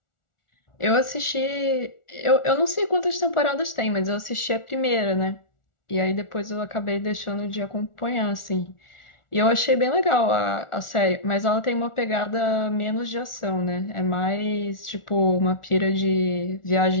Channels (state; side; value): late; right; 1.4 ms